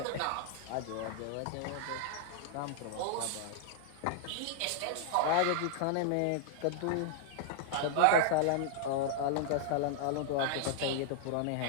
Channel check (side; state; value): both; different; correlation -0.01